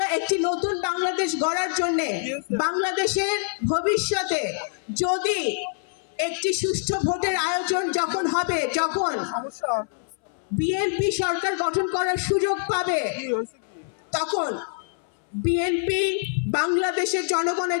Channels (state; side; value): silent; right; 61 dB below the other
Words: একটি নতুন বাংলাদেশ গড়ার জন্য বাংলাদেশের ভবিষ্যতে যদি একটি সুষ্ঠু ভোটের আয়োজন যখন হবে, যখন বিএনপি সরকার গঠন করার সুযোগ পাবে, তখন বিএনপি বাংলাদেশের